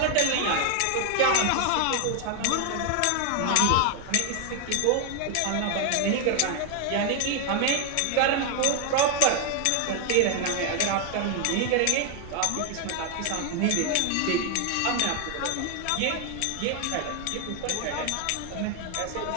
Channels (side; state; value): both; different; correlation 0.01